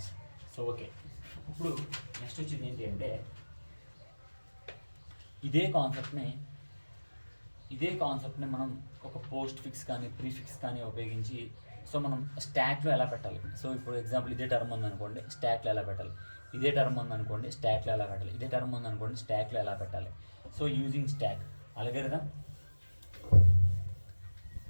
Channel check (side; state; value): both; inverted; correlation -1.00